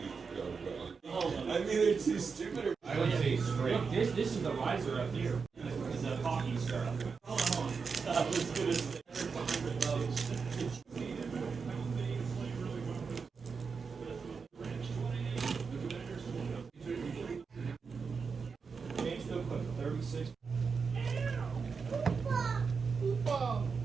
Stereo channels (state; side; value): quieter; left; 5.3 dB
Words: mean, they're too stupid. I would say straight. This is the riser up here. This is the hockey star. Hold on. I was gonna say. James still put 36.